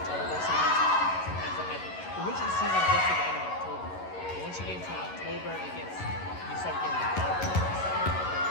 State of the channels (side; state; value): right; late; 11 ms